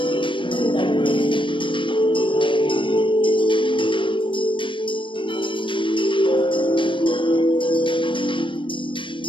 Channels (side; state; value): right; late; 0.24 ms